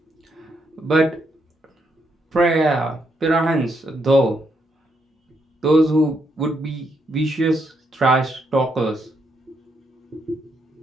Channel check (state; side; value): normal; both; correlation 0.77